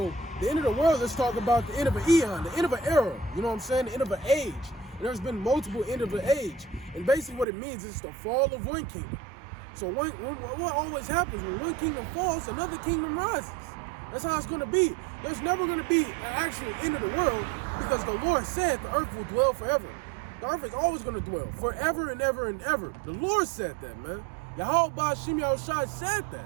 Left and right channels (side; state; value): left; drops out; at 7.5 s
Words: the end of the world, let's talk about the end of an eon, the end of an era. You know what I'm saying? The end of an age. And there's been multiple end of an age. And basically what it means is the fall of one kingdom. So what always happens when one kingdom falls, another kingdom rises. That's how it's going to be. There's never going to be an actual end of the world because the Lord said the earth will dwell forever. The earth is always going to dwell forever and ever and ever. The Lord said that, man. Yahweh Ba'Shem Yahushua said